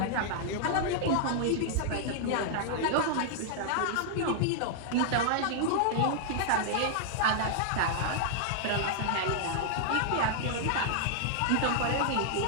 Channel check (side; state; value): both; different; correlation -0.01